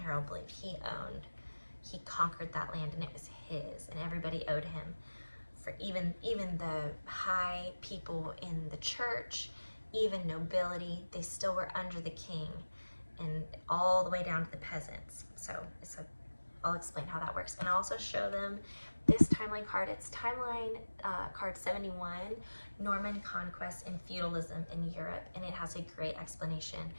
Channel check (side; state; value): both; inverted; correlation -1.00